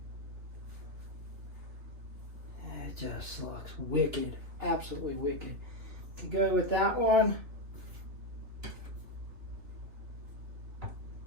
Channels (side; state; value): left; late; 2.9 ms